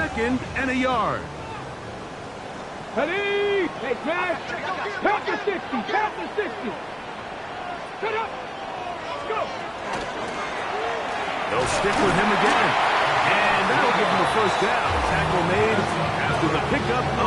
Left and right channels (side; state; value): both; identical; correlation 1.00